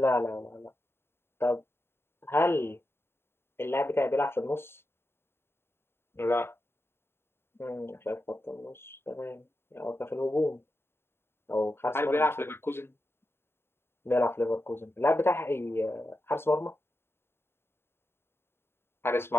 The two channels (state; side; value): late; right; 0.11 ms